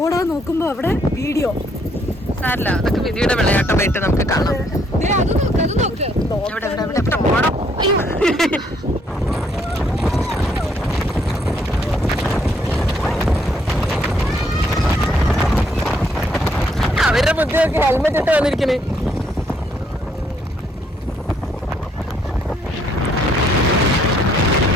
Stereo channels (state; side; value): normal; both; correlation 0.69